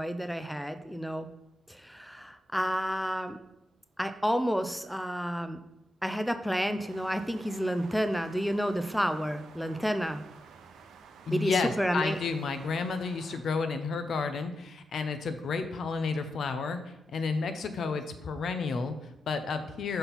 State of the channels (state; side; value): normal; both; correlation 0.89